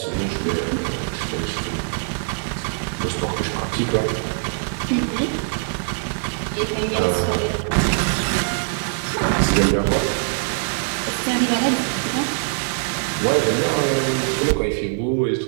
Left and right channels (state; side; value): silent; left; digital silence